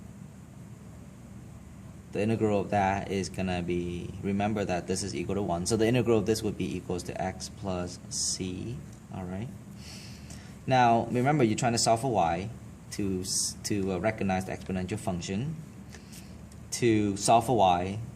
The integral of that is going to be, remember that this is equal to 1. So the integral of this would be equals to x plus c. All right. Now, remember, you're trying to solve for y to recognize the exponential function. To solve for y,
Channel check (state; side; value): identical; both; correlation 1.00